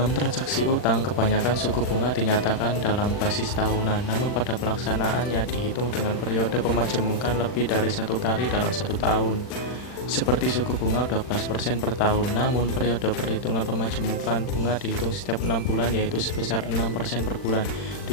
transaksi utang, kebanyakan suku bunga dinyatakan dalam basis tahunan, namun pada pelaksanaannya dihitung dengan periode pemajemukan lebih dari satu kali dalam satu tahun. Seperti suku bunga 12% per tahun, namun periode perhitungan pemajemukan bunga dihitung setiap 6 bulan, yaitu sebesar 6% per bulan.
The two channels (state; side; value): late; right; 40 ms